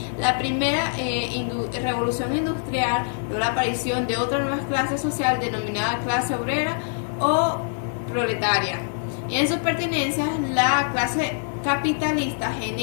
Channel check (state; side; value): silent; right; 62 dB below the other